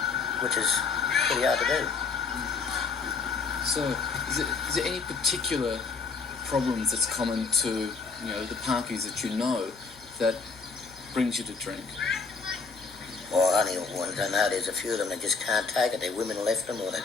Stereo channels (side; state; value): right; quieter; 4.7 dB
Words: which is pretty hard to do. So, is there any particular problems that's common to, you know, the Parkies that you know that brings you to drink? Well, only ones I know, there's a few of them that just can't take it. Their women left them or their